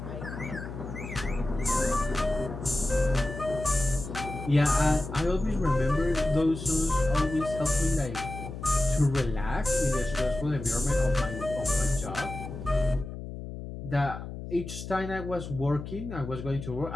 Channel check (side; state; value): left; noise; hum, 9 dB below the sound